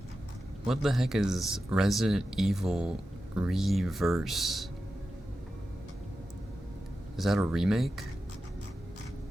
What the heck is Resident Evil Reverse? Is that a remake?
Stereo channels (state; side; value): normal; both; correlation 0.92